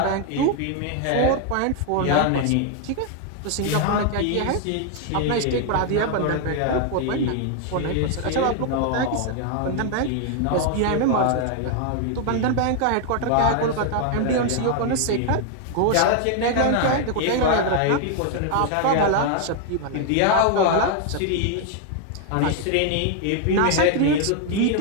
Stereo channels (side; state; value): both; different; correlation 0.00